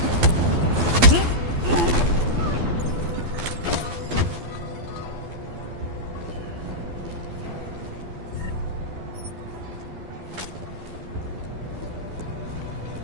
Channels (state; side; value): late; left; 12 ms